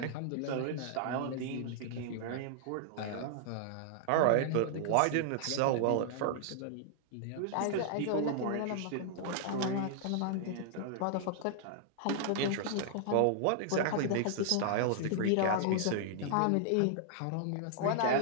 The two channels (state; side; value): different; both; correlation -0.01